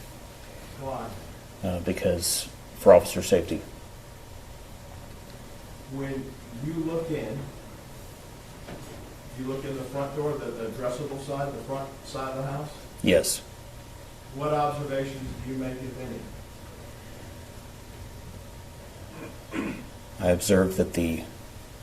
Why? Because for officer safety. When you look in, do you look in the front door, the addressable side, the front side of the house? Yes. What observations do you make, if any? I observed that the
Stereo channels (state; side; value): identical; both; correlation 1.00